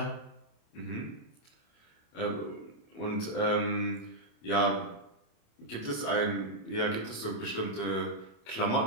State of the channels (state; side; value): late; right; 27 ms